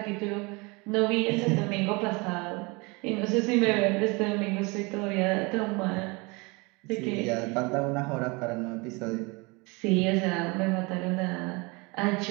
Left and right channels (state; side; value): quieter; left; 27.3 dB